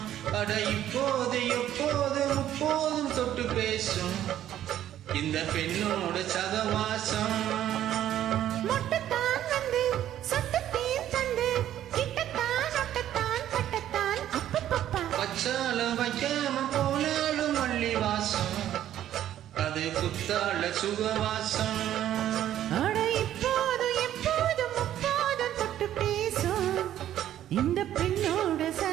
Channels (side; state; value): left; quieter; 11.7 dB